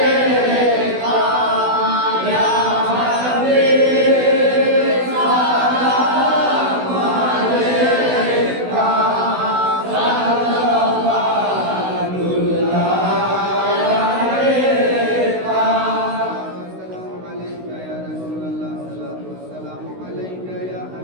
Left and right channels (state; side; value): late; left; 16 ms